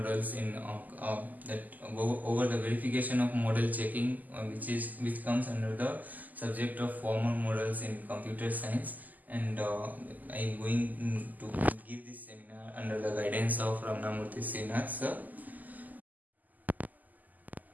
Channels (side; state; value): left; late; 0.082 ms